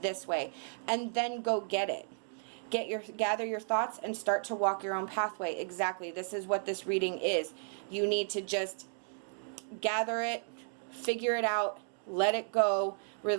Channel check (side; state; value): left; silent; digital silence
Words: way. And then go get it. Gather your thoughts and start to walk your own pathway. Exactly. This is what this reading is. You need to just gather it, figure it out, let it go,